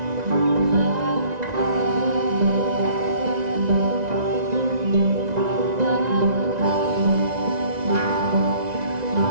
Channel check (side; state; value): left; late; 1.9 ms